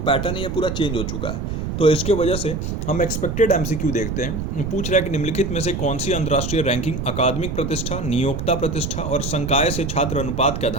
है ये पूरा चेंज हो चुका है। तो इसके वजह से हम एक्सपेक्टेड MCQ देखते हैं। पूछ रहा है कि निम्नलिखित में से कौन सी अंतर्राष्ट्रीय रैंकिंग अकादमिक प्रतिष्ठा, नियोक्ता प्रतिष्ठा और संकाय से छात्र अनुपात के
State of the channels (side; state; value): right; noise; rumble, 4 dB below the sound